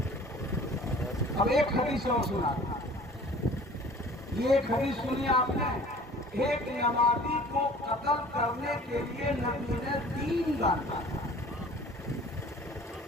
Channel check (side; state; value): both; normal; correlation 0.47